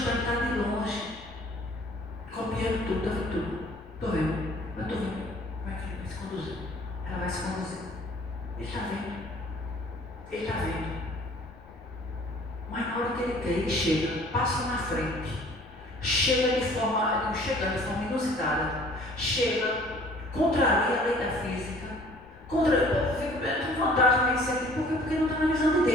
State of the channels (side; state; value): left; noise; rumble, 22 dB below the sound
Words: de longe, copiando tudo, está vendo tudo? Estou vendo, eu estou vendo. Como é que ele vai se conduzir? Ela vai se conduzir. Ele está vendo. Mas na hora que ele quer, ele chega, passa na frente. Chega de forma inusitada, contraria a lei da física, tem vantagem nesse sentido, porque não está na visão de